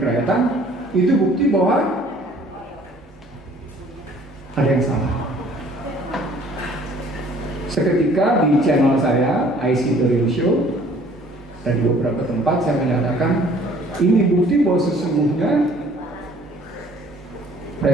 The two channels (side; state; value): both; normal; correlation 0.55